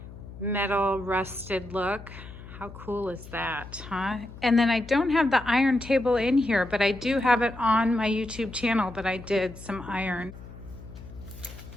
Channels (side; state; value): left; noise; hum, 15 dB below the sound